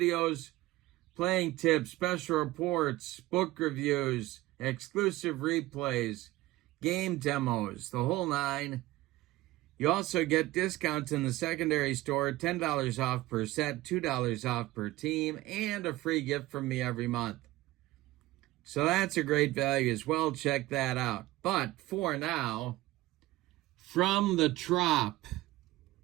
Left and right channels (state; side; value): quieter; left; 17.9 dB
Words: playing tips, special reports, book reviews, exclusive replays, game demos, the whole 9. You also get discounts in the secondary store, $10 off per set, $2 off per team, and a free gift from me every month. So that's a great value as well. Check that out. But for now, from the Trop,